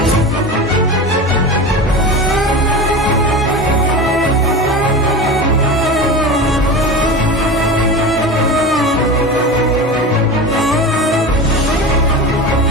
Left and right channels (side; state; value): both; normal; correlation 0.29